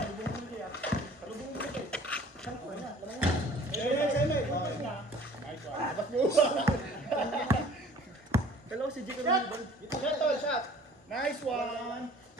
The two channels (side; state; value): both; normal; correlation 0.50